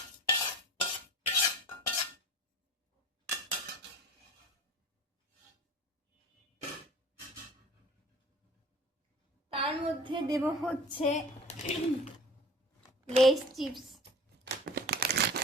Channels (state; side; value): normal; both; correlation 0.41